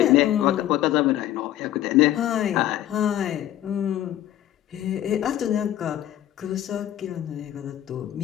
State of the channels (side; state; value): right; quieter; 12.6 dB